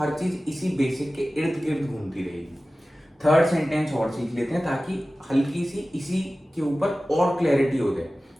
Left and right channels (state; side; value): normal; both; correlation 0.96